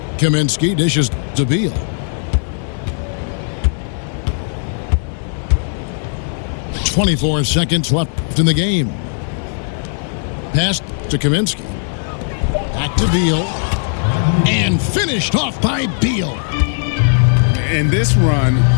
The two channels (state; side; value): silent; right; digital silence